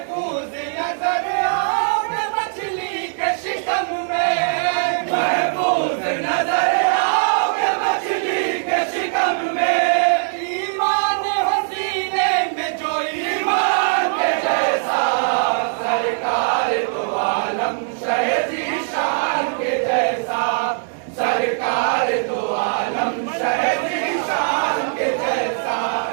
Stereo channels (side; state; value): left; silent; 65 dB below the other